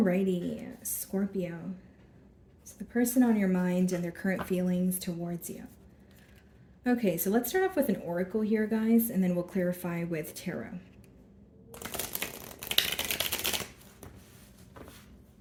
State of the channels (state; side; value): identical; both; correlation 1.00